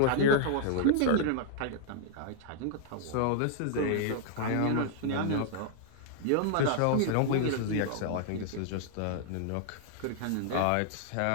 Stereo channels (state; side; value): different; both; correlation -0.01